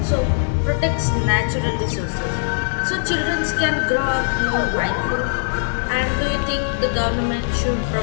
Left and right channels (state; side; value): silent; right; 65 dB below the other